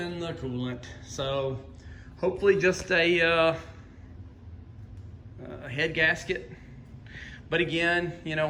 the coolant, so hopefully just a head gasket. But again,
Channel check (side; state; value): both; identical; correlation 1.00